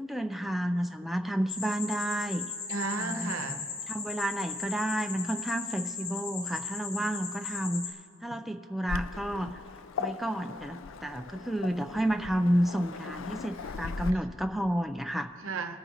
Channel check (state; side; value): normal; both; correlation 0.81